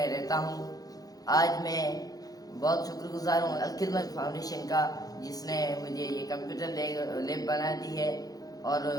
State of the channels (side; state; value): right; late; 0.18 ms